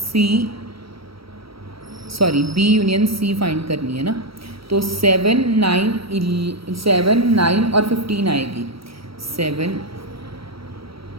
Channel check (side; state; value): left; late; 0.75 ms